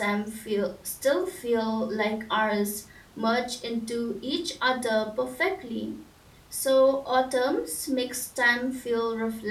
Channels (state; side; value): identical; both; correlation 1.00